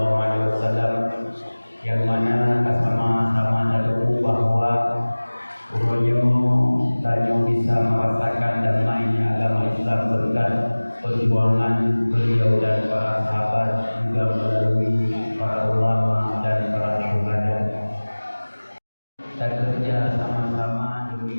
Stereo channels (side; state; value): both; inverted; correlation -1.00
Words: alaihi wasallam, yang mana sama-sama tahu bahwa urunyo tanyo bisa merasakan damainya agama Islam berkat perjuangan beliau dan para sahabat, juga melalui para ulama dan para syuhada. Dan kerja sama-sama